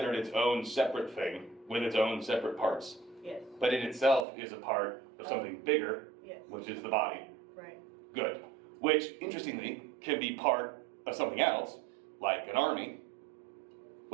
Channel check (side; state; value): left; drops out; at 4.2 s